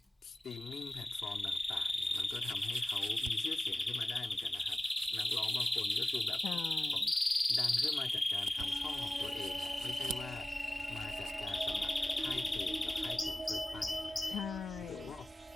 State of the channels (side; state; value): both; normal; correlation 0.97